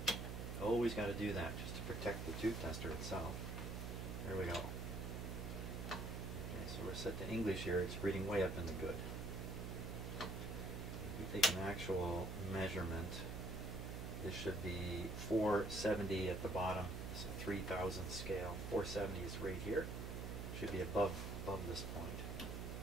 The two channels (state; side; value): noise; right; hum, 4 dB below the sound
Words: Always got to do that just to protect the tube tester itself. There we go. Okay, so we're set to English here. It's reading way up in the good. If we take an actual measurement, this should be 470 at the bottom. It's a 3000 scale. 470 is right here. Should be above this point.